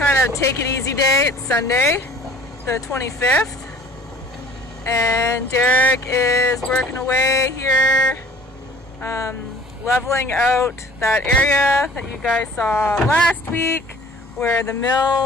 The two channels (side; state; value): both; normal; correlation 0.49